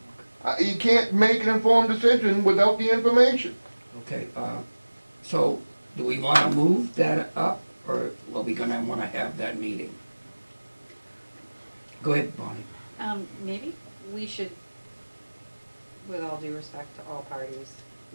You can't make an informed decision without the information. Okay, so do we want to move that up, or are we gonna want to have that meeting? Go ahead, Bonnie. Maybe we should, with all due respect to all parties,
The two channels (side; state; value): both; inverted; correlation -1.00